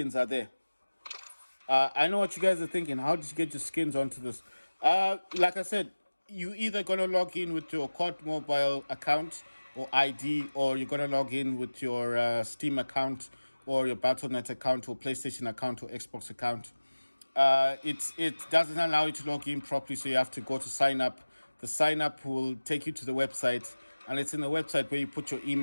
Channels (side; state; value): both; inverted; correlation -1.00